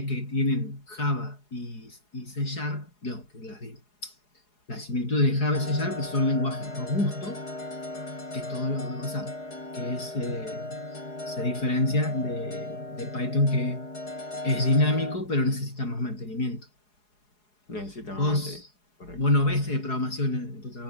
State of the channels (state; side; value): late; right; 4.8 ms